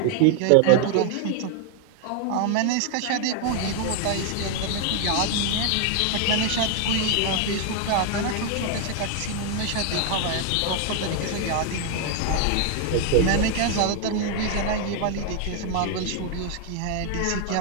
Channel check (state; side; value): different; both; correlation 0.00